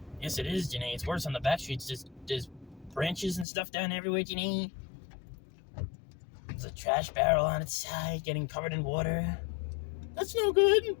Yes, it is, Janae. It's worse on the back streets. There's branches and stuff down everywhere, Janae. There's a trash barrel on its side getting covered in water. That's no good.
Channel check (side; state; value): right; drops out; at 3.5 s